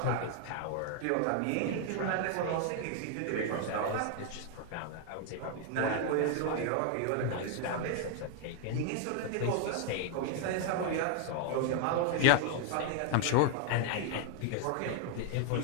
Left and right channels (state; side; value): different; both; correlation 0.00